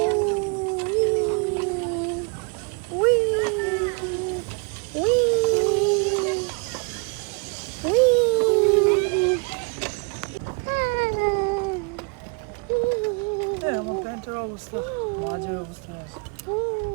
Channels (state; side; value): quieter; left; 34.8 dB